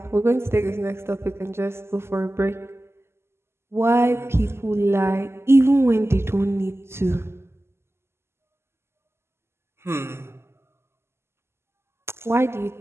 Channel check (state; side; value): late; left; 0.12 ms